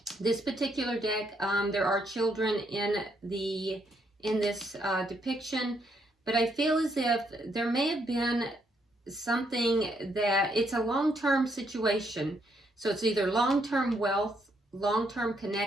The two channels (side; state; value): both; normal; correlation 0.74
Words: This particular deck, there are children in this depiction, but I feel as if there may have been something that it's a long-term situation. So it's either long-term wealth, long-term